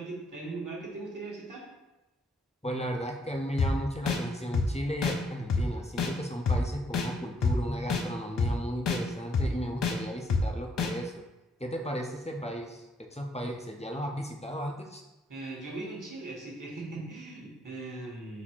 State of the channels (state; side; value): normal; both; correlation 0.71